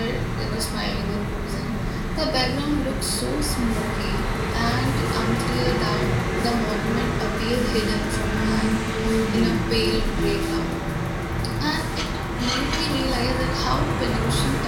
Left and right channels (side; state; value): both; identical; correlation 1.00